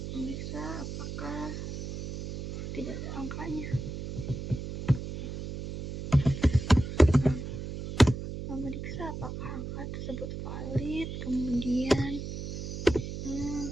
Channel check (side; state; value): right; noise; hum, 6 dB below the sound